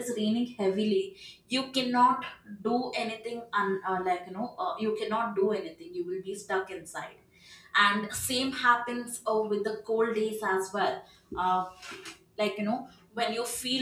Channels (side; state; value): both; identical; correlation 1.00